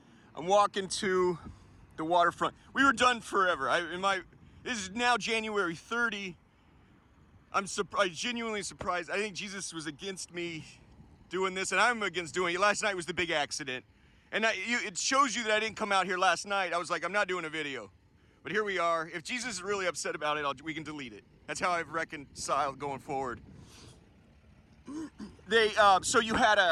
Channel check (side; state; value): both; identical; correlation 1.00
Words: I'm walking to the waterfront. We were done forever. This is now January 30. I'm genuinely surprised. I think Jesus was against me doing this, and I'm against doing it. Last night was the big accident. And it shows you that I didn't come out here last night. I was like, I'm not doing a video. But here we are. If Jesus is really upset about it, we can delete it. That's how I've reconciled going forward. So you had